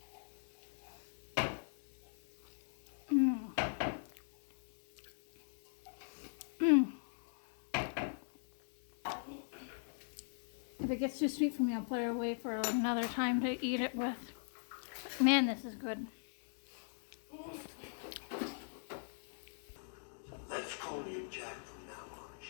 If it gets too sweet for me, I'll put it away for another time to eat it with. Man, this is good. Let's call you Jack from now on,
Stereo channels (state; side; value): silent; right; digital silence